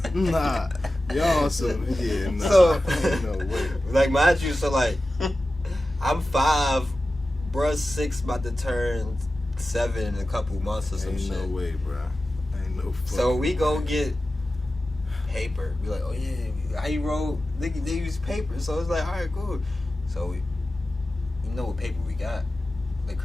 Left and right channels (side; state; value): both; normal; correlation 0.94